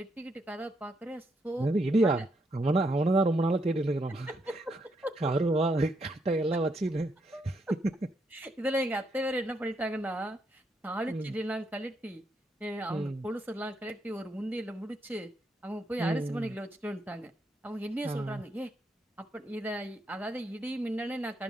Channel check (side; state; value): both; normal; correlation 0.77